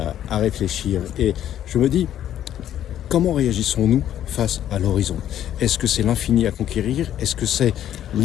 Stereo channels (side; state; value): right; quieter; 11.2 dB